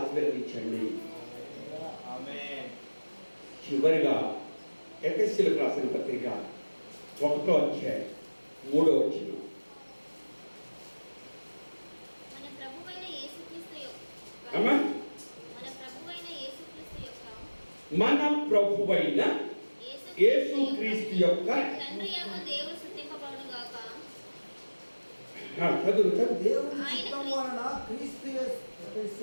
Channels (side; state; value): both; inverted; correlation -1.00